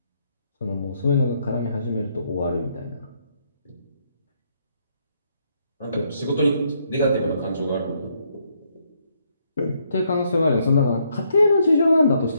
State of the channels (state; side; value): inverted; both; correlation -0.74